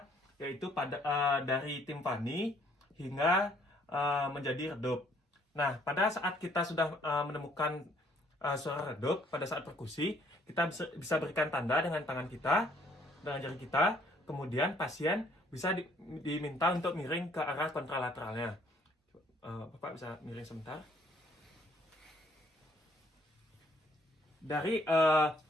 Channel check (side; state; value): both; normal; correlation 0.64